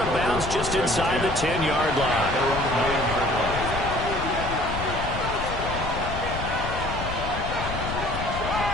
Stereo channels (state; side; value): noise; left; rumble, 6 dB below the sound